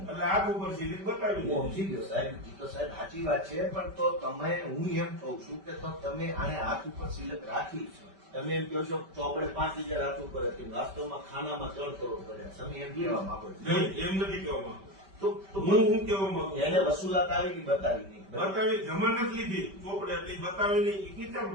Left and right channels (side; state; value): left; late; 5.1 ms